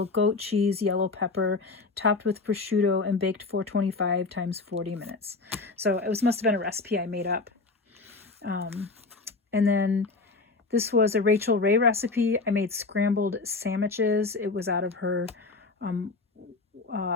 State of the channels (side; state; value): right; quieter; 3.9 dB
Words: goat cheese, yellow pepper, topped with prosciutto and baked 425 times 40 minutes. So it must have been a recipe I made up. And then this was a Rachel Ray recipe. I made scrambled sandwiches. It was out of her